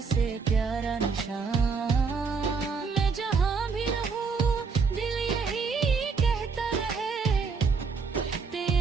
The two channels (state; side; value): quieter; left; 5.1 dB